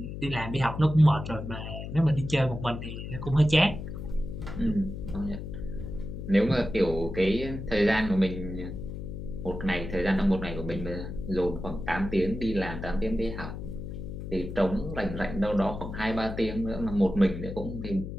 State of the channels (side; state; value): left; noise; hum, 8 dB below the sound